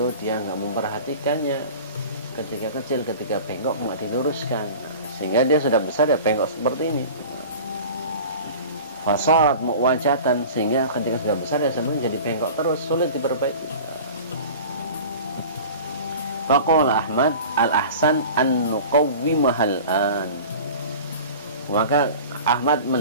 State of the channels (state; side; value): inverted; both; correlation -0.39